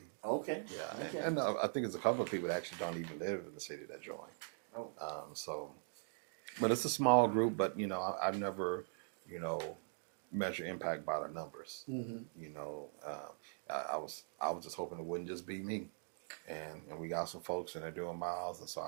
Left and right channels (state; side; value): silent; left; digital silence